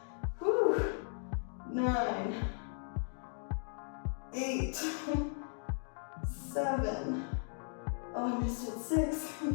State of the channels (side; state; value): right; silent; 53 dB below the other